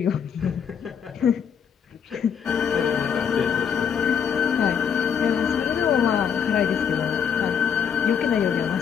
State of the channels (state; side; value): quieter; right; 7.5 dB